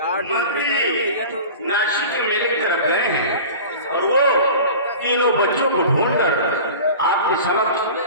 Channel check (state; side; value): inverted; both; correlation -0.37